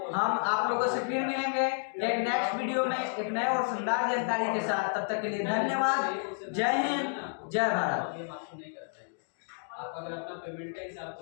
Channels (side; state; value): right; silent; digital silence